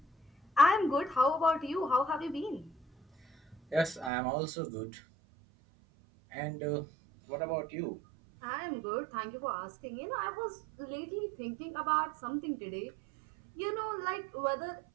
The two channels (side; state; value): left; drops out; at 4.1 s